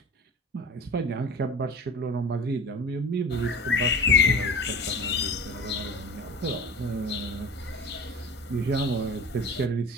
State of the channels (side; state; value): both; normal; correlation 0.36